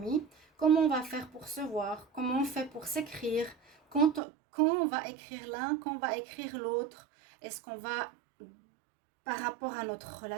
Comment on va faire pour se voir? Comment on fait pour s'écrire? Quand on va écrire l'un, quand on va écrire l'autre? Est-ce qu'on va, par rapport à notre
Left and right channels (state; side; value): drops out; left; at 4.2 s